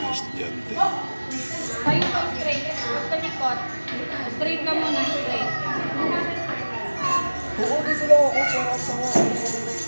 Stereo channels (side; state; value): both; inverted; correlation -1.00